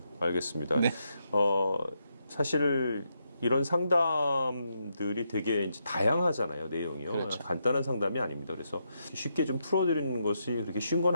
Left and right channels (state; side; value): inverted; both; correlation -0.81